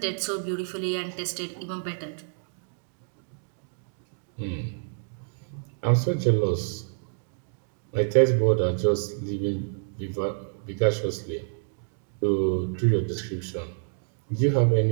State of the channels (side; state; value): left; silent; digital silence